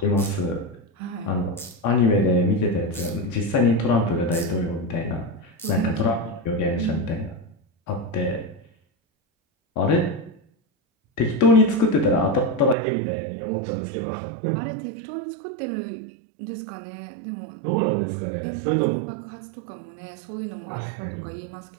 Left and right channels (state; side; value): drops out; left; at 12.8 s